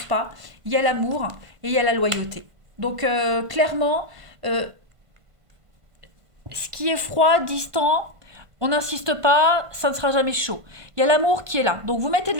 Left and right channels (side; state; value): left; late; 1.5 ms